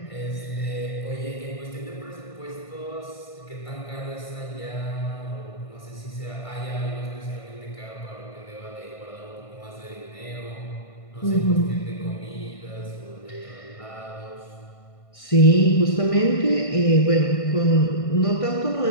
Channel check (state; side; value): late; right; 1.5 ms